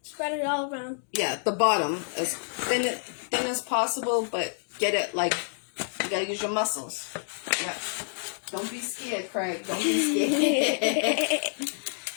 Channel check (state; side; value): silent; right; digital silence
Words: Spread it all around. Yeah, the bottom as thin as possible, but get it like you gotta use your muscles. Yeah. Don't be scared, Craig. Don't be scared.